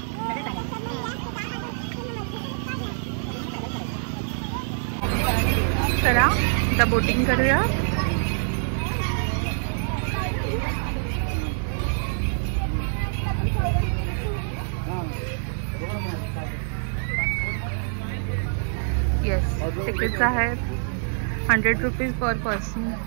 चला आता बोटिंग करूया. येस, तिकीट्स आहेत 100 रुपीज पर पर्सन.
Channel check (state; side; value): silent; left; digital silence